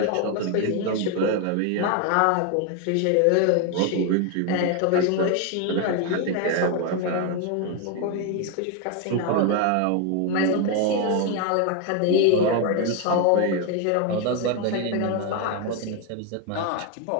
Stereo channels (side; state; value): both; different; correlation 0.01